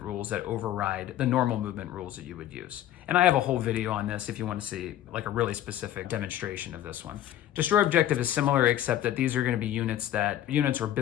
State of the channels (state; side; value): quieter; right; 12.4 dB